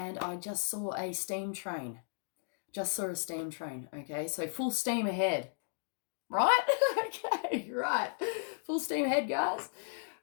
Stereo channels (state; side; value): silent; right; digital silence